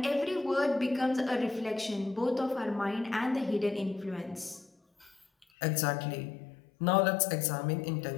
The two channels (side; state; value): right; drops out; at 5.5 s